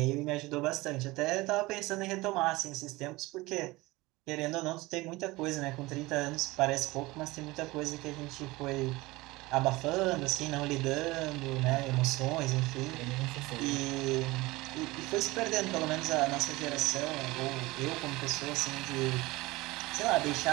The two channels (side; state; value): left; quieter; 20.9 dB